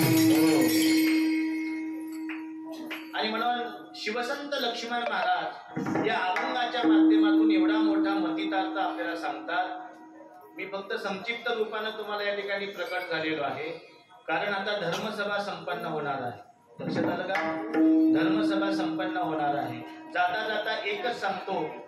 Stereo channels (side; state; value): both; identical; correlation 1.00